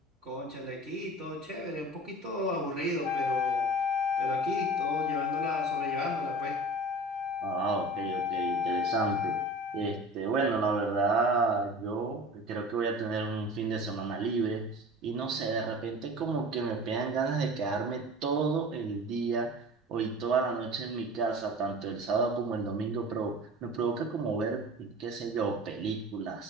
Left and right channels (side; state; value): both; normal; correlation 0.39